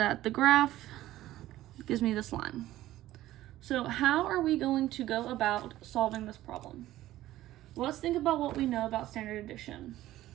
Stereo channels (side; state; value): left; quieter; 14.9 dB